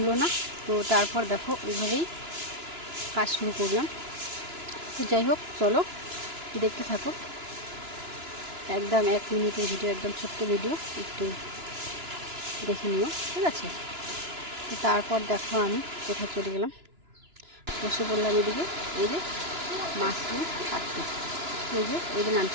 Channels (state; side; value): late; left; 2.9 ms